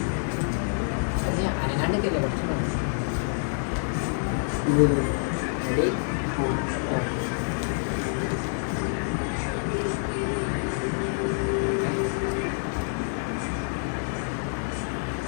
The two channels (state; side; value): silent; right; 60 dB below the other